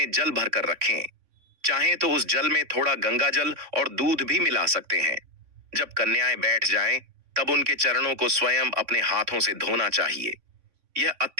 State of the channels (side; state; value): left; late; 3.6 ms